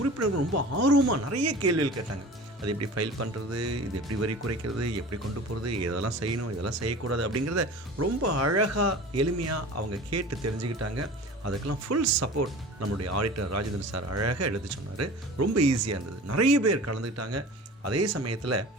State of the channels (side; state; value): both; normal; correlation 0.39